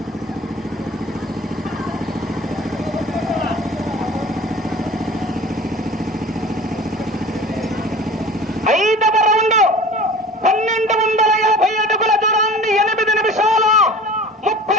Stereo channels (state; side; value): normal; both; correlation 0.41